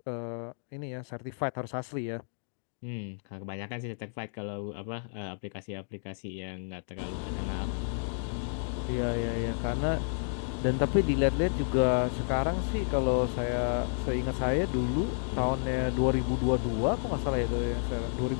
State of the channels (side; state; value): right; silent; digital silence